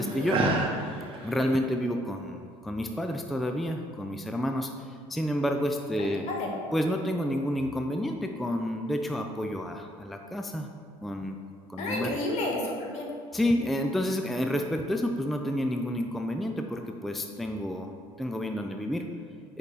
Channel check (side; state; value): both; normal; correlation 0.74